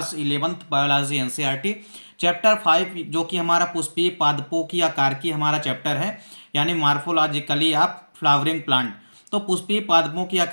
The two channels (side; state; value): both; inverted; correlation -1.00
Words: 11th biology NCERT chapter 5, जो कि हमारा पुष्पीय पादपों की आकार की हमारा चैप्टर है, यानी मार्फोलॉजिकली ऑफ फ्लावरिंग प्लांट। तो पुष्पीय पादपों की